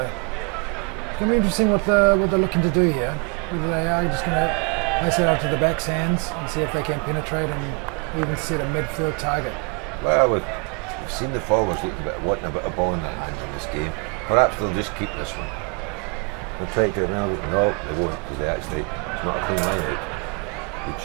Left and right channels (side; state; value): left; quieter; 36.0 dB